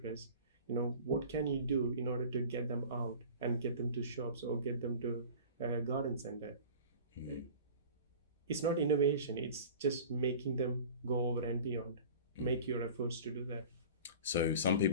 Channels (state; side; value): inverted; both; correlation -0.40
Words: what can you do in order to get them out and get them to shops or get them to a garden center? It's not innovation, it's just making them go over and beyond. Make your efforts to do that. So some